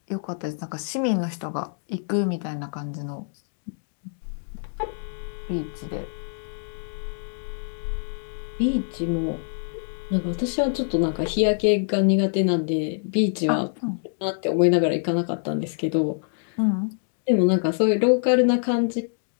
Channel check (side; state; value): right; silent; digital silence